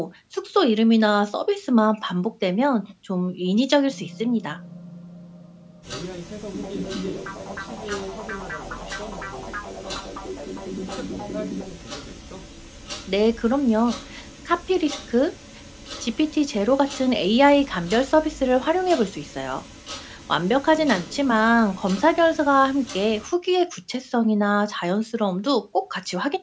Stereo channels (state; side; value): identical; both; correlation 1.00